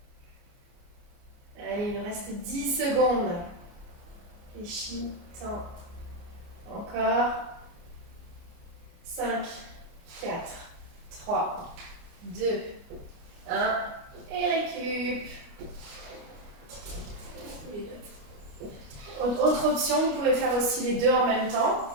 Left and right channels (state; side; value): late; left; 29 ms